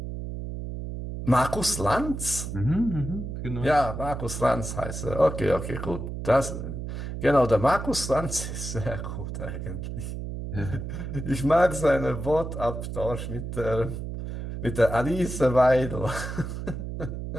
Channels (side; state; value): right; noise; hum, 6 dB below the sound